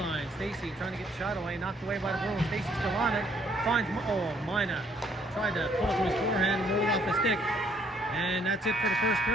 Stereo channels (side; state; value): both; normal; correlation 0.66